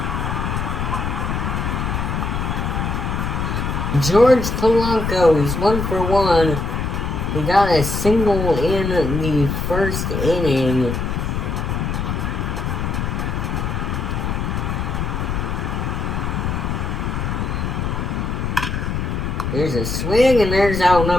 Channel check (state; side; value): noise; left; rumble, 1 dB below the sound